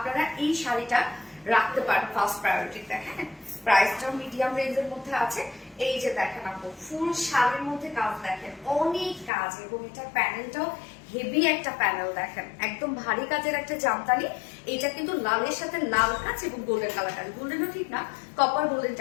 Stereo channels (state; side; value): drops out; right; at 9.3 s